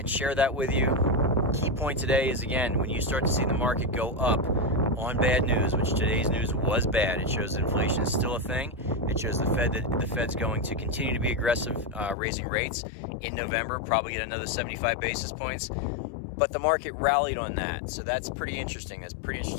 share that with you. Key point today is, again, when you start to see the market go up on bad news, which today's news was bad, it shows that inflation is still a thing. It shows the Fed's going to continue to be aggressive, raising rates in November, probably get another 75 basis points. But the market rallied on that, so that's pretty interesting. That's pretty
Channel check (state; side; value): drops out; right; at 12.2 s